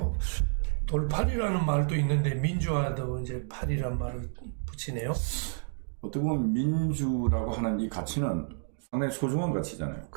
돌파리라는 말도 있는데 민주화도 이제 파리란 말을 붙이네요. 어떻게 보면 민주라고 하는 이 가치는 상당히 소중한 가치잖아요.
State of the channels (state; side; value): silent; left; digital silence